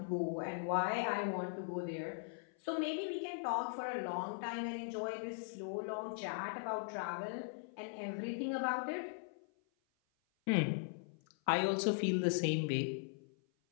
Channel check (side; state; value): right; silent; 51 dB below the other